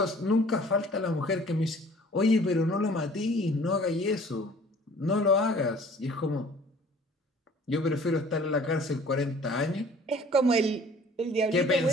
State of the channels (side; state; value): both; normal; correlation 0.51